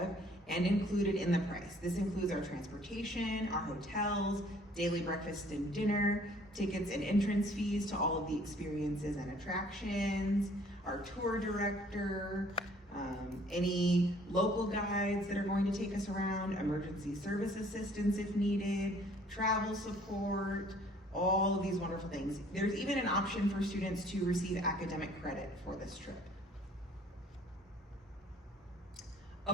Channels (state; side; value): normal; both; correlation 0.57